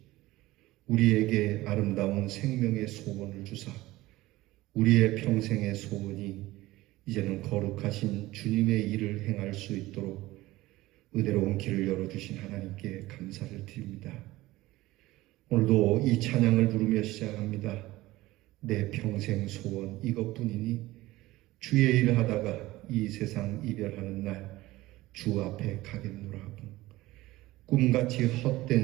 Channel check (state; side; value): quieter; left; 18.0 dB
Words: 우리에게 아름다운 생명의 소원을 주사 우리의 평생의 소원이 이제는 거룩하신 주님의 일을 행할 수 있도록 은혜로운 길을 열어주신 하나님께 감사를 드립니다. 오늘도 이 찬양을 부르며 시작합니다. 내 평생 소원 이것뿐이니 주의 일을 하다가 이 세상 이별하는 날 주 앞에 가겠노라 하고 꿈같이